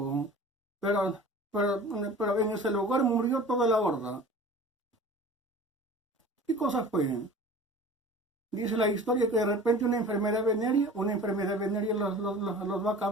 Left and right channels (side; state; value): both; normal; correlation 0.41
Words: pero en ese lugar murió toda la horda. ¿Qué cosa fue? Dice la historia que de repente una enfermedad venérea los va a